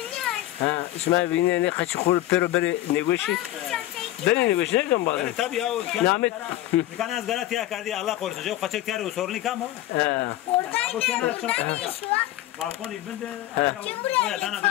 İsmail beni ne kaçı kul pero beri negoşi. Beri negoşi ne kan bazı? Tabii ya. Nahmet. Kan az galat ya kardi Allah korusun. Jo kaçak tiyar o sorun ikam o. Balkon ibinde. Ya dana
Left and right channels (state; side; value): quieter; right; 15.0 dB